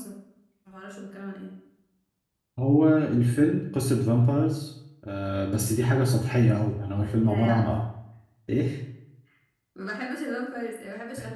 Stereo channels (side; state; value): both; identical; correlation 1.00